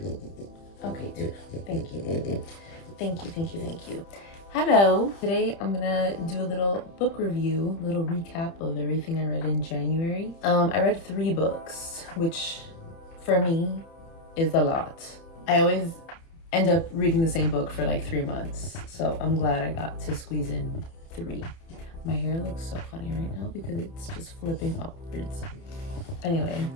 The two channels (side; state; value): right; late; 30 ms